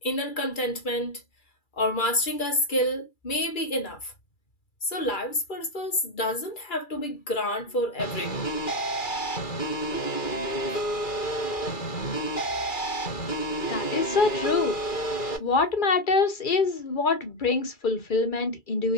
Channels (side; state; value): right; late; 2.3 ms